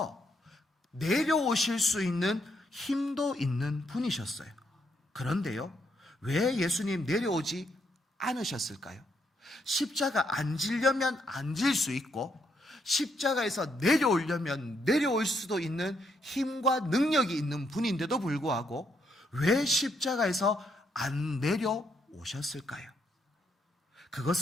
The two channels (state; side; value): normal; both; correlation 0.75